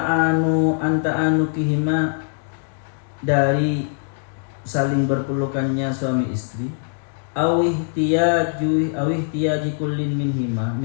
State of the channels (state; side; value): silent; right; digital silence